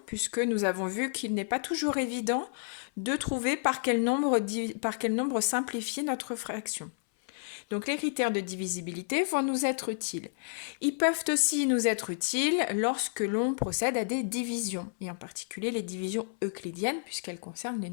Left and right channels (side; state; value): right; silent; 57 dB below the other